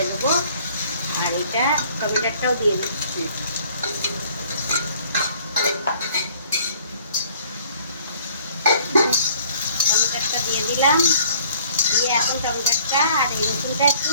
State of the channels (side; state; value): both; inverted; correlation -0.57